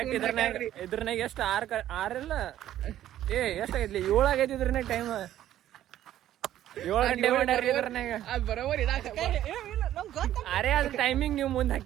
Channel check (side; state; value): left; quieter; 12.4 dB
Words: ಇದ್ರನಾಗ ಎಷ್ಟು 6 ಇಲ್ಲ ಎಷ್ಟಾಗೈತ್ಲಿ 7 ಆಗೈತಿ ಇದ್ರನಾಗ ಟೈಮ್ 7 ಗಂಟೆ ಮಾಡ್ಯಾರ್ರಿ ಇದ್ರನಾಗ ಅದ್ ಬರೋಬರ್ ಅರೆ ಅದ್ರ ಟೈಮಿಂಗ್ ನೀವು ಮುಂದ್